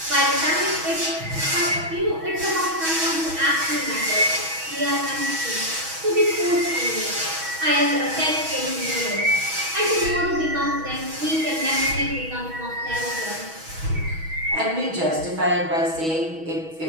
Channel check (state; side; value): late; left; 6.2 ms